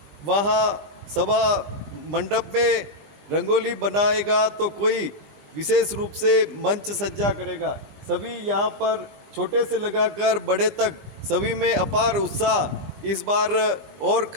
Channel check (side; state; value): left; late; 20 ms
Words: वहाँ सभा मंडप में रंगोली बनाएगा तो कोई विशेष रूप से मंच सज्जा करेगा। सभी यहाँ पर छोटे से लगाकर बड़े तक सभी में अपार उत्साह इस बार और